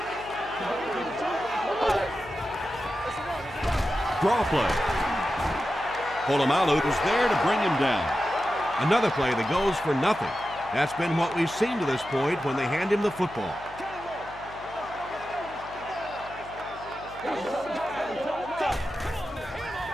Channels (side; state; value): left; noise; hum, 19 dB below the sound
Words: Draw play. Polamalu was there to bring him down. Another play that goes for nothing. That's been what we've seen to this point when they hand him the football.